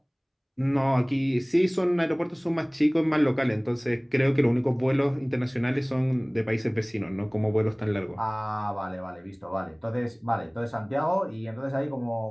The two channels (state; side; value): identical; both; correlation 1.00